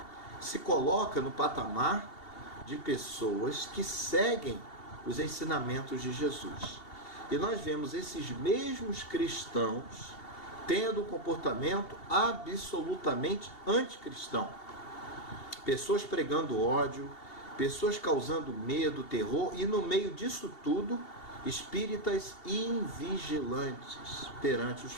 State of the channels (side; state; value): right; late; 2.7 ms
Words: Se coloca no patamar de pessoas que seguem os ensinamentos de Jesus. E nós vemos esses mesmos cristãos tendo um comportamento absolutamente anticristão. Pessoas pregando ódio, pessoas causando medo, terror, e no meio disso tudo, espíritas invigilantes perante os